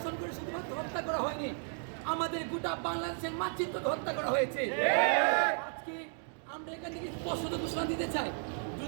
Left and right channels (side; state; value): left; silent; 55 dB below the other